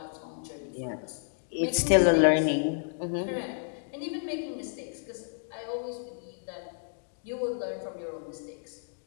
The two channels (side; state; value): right; silent; digital silence